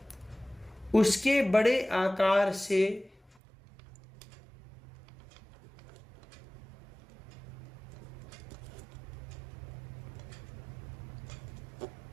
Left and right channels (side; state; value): left; drops out; at 3.4 s